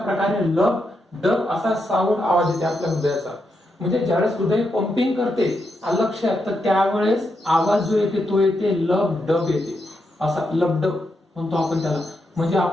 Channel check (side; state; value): both; normal; correlation 0.83